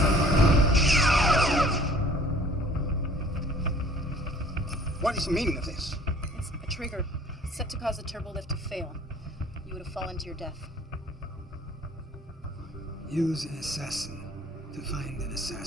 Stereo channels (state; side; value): normal; both; correlation 0.52